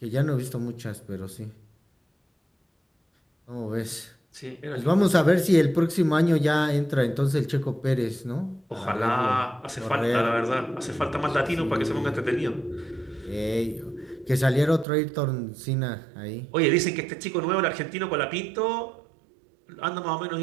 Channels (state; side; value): drops out; left; at 14.9 s